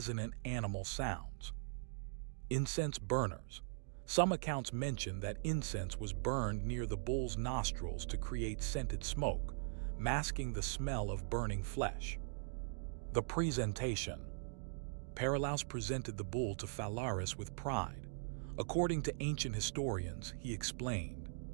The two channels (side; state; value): left; silent; digital silence